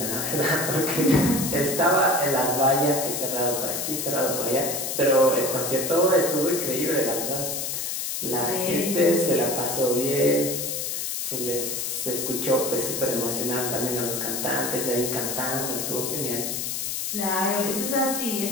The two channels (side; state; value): left; noise; hiss, 2 dB below the sound